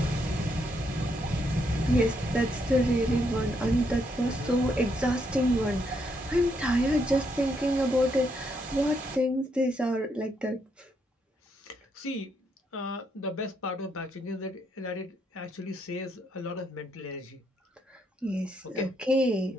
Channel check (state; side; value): normal; both; correlation 0.76